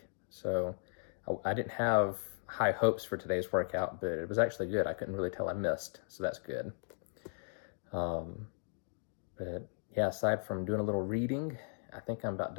so I didn't have high hopes for today's workout, but it was actually good. I couldn't really tell I missed, so that's good. But yeah, aside from doing a little reading, I think I'm about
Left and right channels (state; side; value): silent; right; digital silence